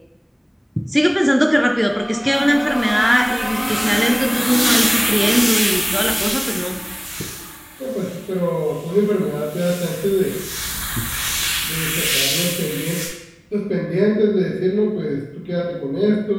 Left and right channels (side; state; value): both; identical; correlation 1.00